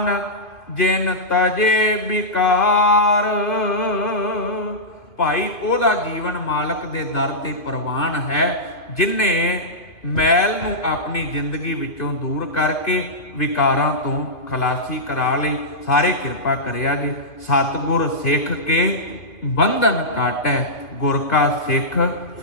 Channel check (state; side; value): late; right; 2.8 ms